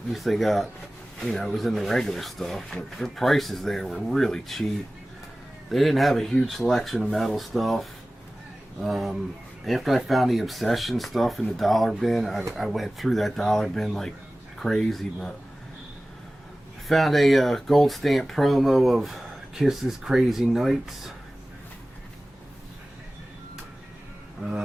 At least they got, you know, it was in the regular stuff. But their prices there were really cheap. They didn't have a huge selection of metal stuff. After I found the Obsession stuff in the dollar bin, I went through that dollar bin like crazy. But I found a gold stamp promo of Kiss's Crazy Nights.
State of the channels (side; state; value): both; normal; correlation 0.97